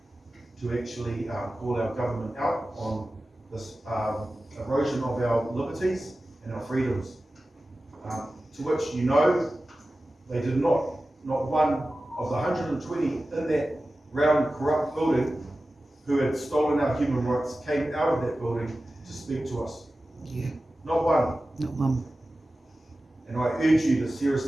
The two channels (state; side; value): normal; both; correlation 0.95